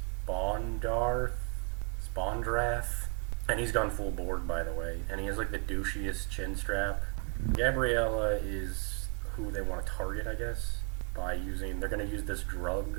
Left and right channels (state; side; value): quieter; left; 36.2 dB